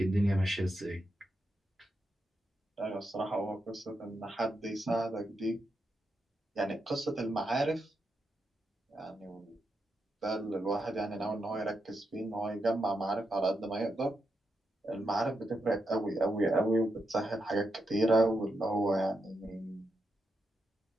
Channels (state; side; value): normal; both; correlation 0.85